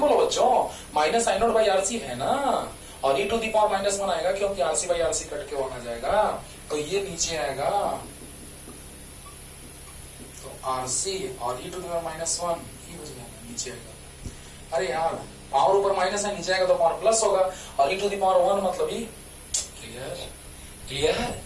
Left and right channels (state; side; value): identical; both; correlation 1.00